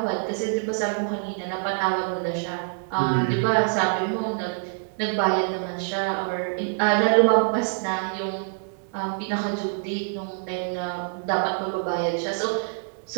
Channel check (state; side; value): silent; left; 61 dB below the other